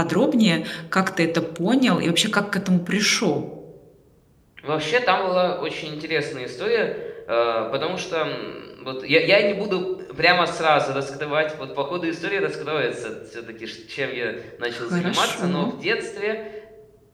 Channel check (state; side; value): identical; both; correlation 1.00